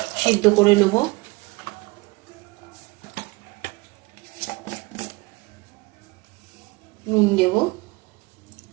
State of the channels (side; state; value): left; quieter; 24.2 dB